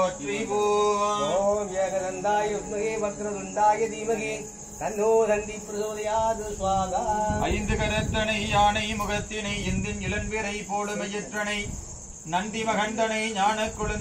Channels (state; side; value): identical; both; correlation 1.00